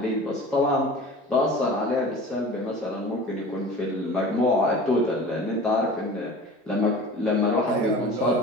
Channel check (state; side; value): normal; both; correlation 0.39